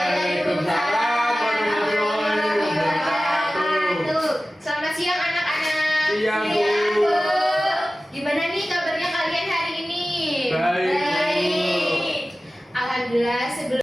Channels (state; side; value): normal; both; correlation 0.96